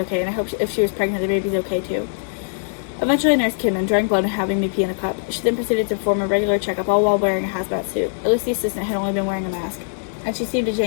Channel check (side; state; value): right; silent; digital silence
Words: and I hoped if she was pregnant, the baby's okay too. Eventually, a nurse came in, drawing blood and having me pee in a cup. She then proceeded to perform a regular checkup, all while wearing a hazmat suit. At least the assistant had only been wearing a mask, and she seemed to